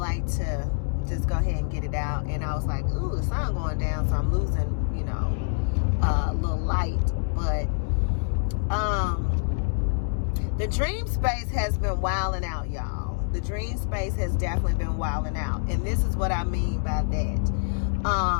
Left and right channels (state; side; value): silent; right; digital silence